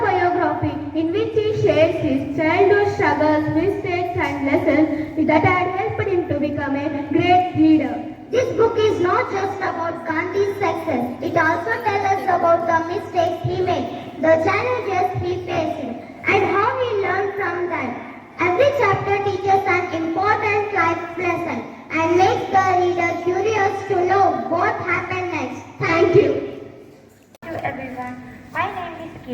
in which he shares his childhood struggles, mistakes and lessons that had helped him to become a great leader. This book is not just about Gandhi's success. It also tells us about the mistakes he made, the challenges he faced, and how he learned from them. Every chapter teaches an important life lesson and makes the reader curious to know what happened next. Thank you. Hello everyone, my name is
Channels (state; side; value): identical; both; correlation 1.00